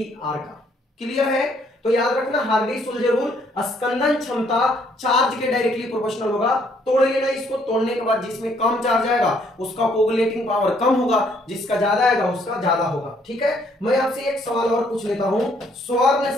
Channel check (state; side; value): normal; both; correlation 0.67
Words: का। क्लियर है? तो याद रखना हार्डी-सुलजे रूल, स्कंदन क्षमता चार्ज के डायरेक्टली प्रोपोर्शनल होगा। तोड़ लेना इसको, तोड़ने के बाद जिसमें कम चार्ज आएगा उसका कोगुलेटिंग पावर कम होगा, जिसका ज्यादा आएगा उसका ज्यादा होगा। ठीक है, मैं आपसे एक सवाल और पूछ लेता हूं, स्वर्ण